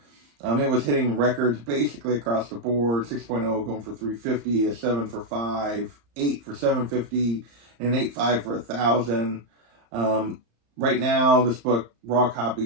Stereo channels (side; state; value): left; late; 35 ms